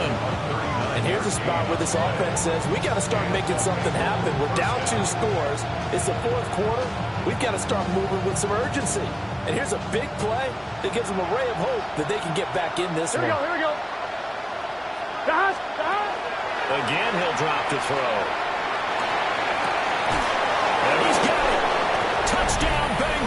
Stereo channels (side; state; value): both; identical; correlation 1.00